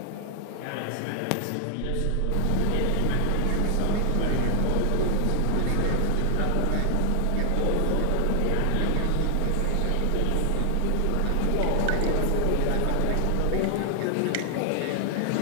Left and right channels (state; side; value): different; both; correlation 0.00